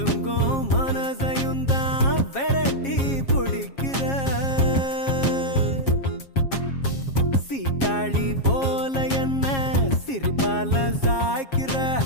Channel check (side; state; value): right; late; 7.4 ms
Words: மனசையும் தான் விரட்டி பிடிக்கிற சீட்டாளி போல என்ன சிரிப்பால சாய்க்கிற